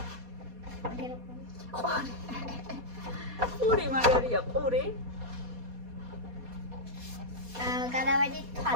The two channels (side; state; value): left; late; 4.2 ms